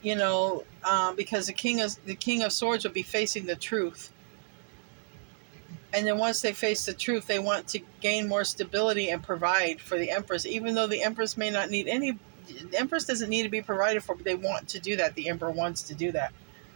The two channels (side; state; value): left; silent; digital silence